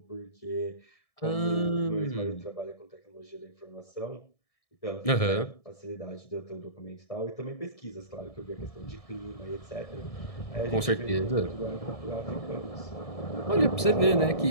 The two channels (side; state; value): right; late; 1.7 ms